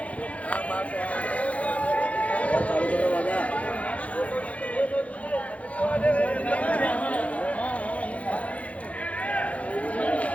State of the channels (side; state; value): right; late; 0.065 ms